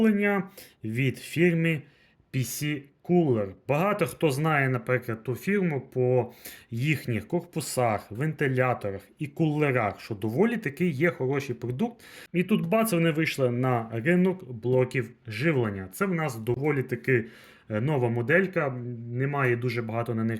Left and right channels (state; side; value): identical; both; correlation 1.00